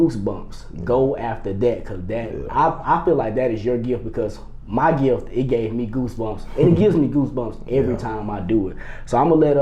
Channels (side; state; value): both; identical; correlation 1.00